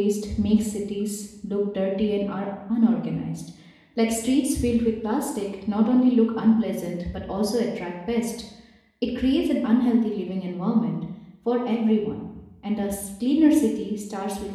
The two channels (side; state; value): both; identical; correlation 1.00